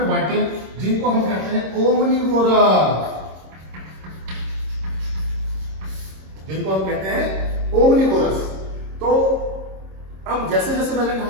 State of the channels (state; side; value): late; left; 26 ms